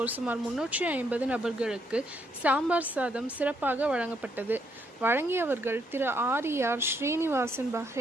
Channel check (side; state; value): both; normal; correlation 0.74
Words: சுமார் 350 நபர்களுக்கு சாம்பார் சாதம் சிறப்பாக வழங்கப்பட்டது. வழங்கியவர்கள் திரு ஆர் ஸ்ரீனிவாசன்